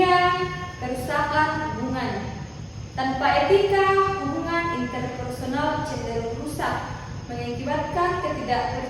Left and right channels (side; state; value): both; identical; correlation 1.00